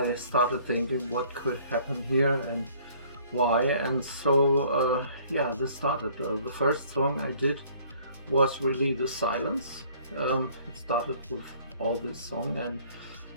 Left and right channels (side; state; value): both; inverted; correlation -0.57